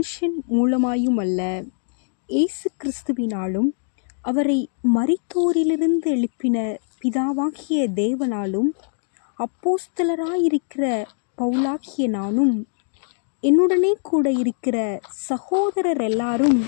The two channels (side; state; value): right; silent; digital silence